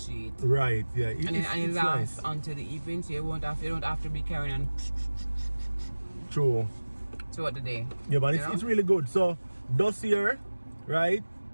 Right, yeah. And it lasts until the evening, so you don't have to be carrying on True. throughout the day. Yeah, but it's really good. So, dossier, right?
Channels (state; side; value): inverted; both; correlation -1.00